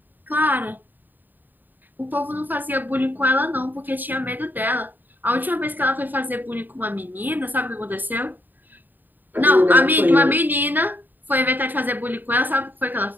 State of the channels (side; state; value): left; late; 0.089 ms